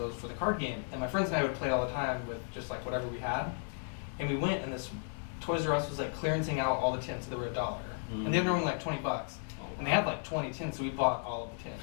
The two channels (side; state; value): right; silent; 55 dB below the other